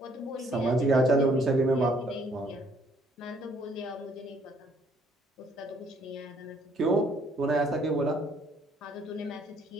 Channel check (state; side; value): normal; both; correlation 0.64